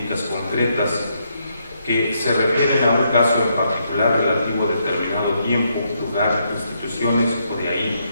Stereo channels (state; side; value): inverted; both; correlation -0.76